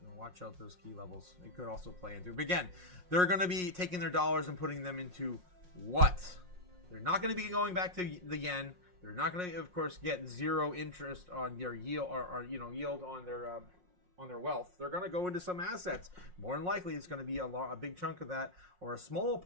watch out those key levels. It could also play into. But again, they're going to be taking their dollars and putting them into what? They're not going to be going back to the yen. They're not going to, of course, get zero interest on their yield or yield on their wealth. They're going to go into some assets. More than likely, it's going to be a big chunk of that, or a small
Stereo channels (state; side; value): late; left; 5.6 ms